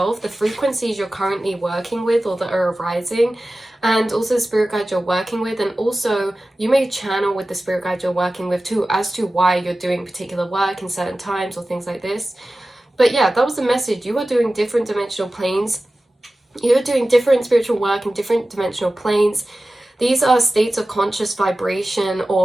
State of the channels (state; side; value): normal; both; correlation 0.95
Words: the frequencies you're currently working with or that are arising, and also the spirit guide you're working with. And also you may channel with the spirit guide you're working with too, as to why you're doing particular work in certain times or things like this. But yeah, that was the message. You are doing different dimensional planes. You're doing different spiritual work in different dimensional planes. These are states of conscious vibration